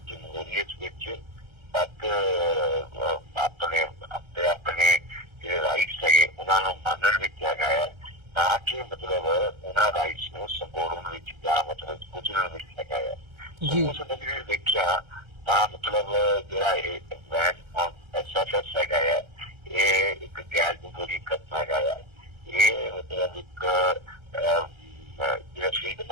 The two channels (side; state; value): left; late; 1.3 ms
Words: ਵਿੱਚ, ਵੱਧ ਆਪਣੇ ਜਿਹੜੇ ਰਾਈਟਸ ਹੈਗੇ ਉਹਨਾਂ ਨੂੰ ਮੰਨਣ ਵਿੱਚ ਹੈਗਾ ਹੈ, ਨਾ ਕਿ ਮਤਲਬ ਉਹਨਾਂ ਰਾਈਟਸ ਨੂੰ ਸੰਬੋਧਨ ਵਿੱਚ ਜਾਂ ਮਤਲਬ ਕੁਚਲਣ ਵਿੱਚ ਹੈਗਾ ਹੈ। ਉਸ ਨਜ਼ਰੀਏ ਦੇਖਿਆ ਤਾਂ ਮਤਲਬ ਜਿਹੜਾ ਇਹ ਬੈਨ ਔਨ ਐਸਐਫਐਸ ਹੈਗਾ ਹੈ ਇਹ ਇੱਕ ਗੈਰ ਜਮਹੂਰੀ ਕਦਮ ਹੈਗਾ ਹੈ। ਇਹ ਮਤਲਬ ਇੱਕ ਜਿਹੜਾ ਫਰੀडम